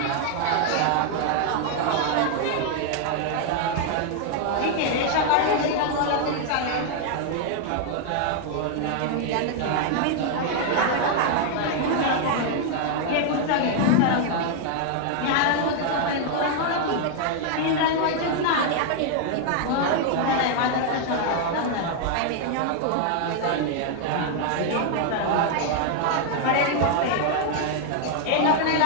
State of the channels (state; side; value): different; both; correlation 0.00